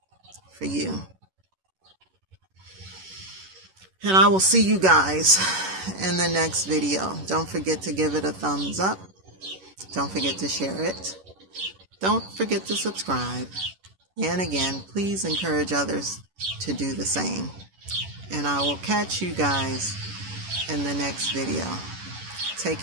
for you. And I will see you guys in the next video. Don't forget to give it a thumbs up. Don't forget to share it. Don't forget to subscribe. And again, please encourage others to do the same. And I will catch you guys in the next video. Take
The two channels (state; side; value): late; left; 11 ms